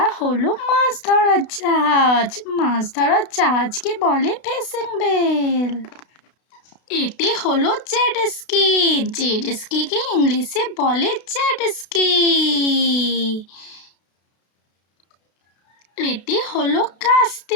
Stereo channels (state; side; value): late; right; 32 ms